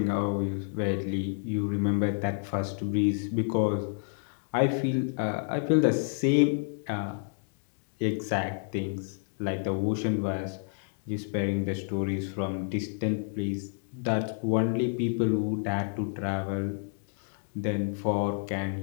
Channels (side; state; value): right; silent; digital silence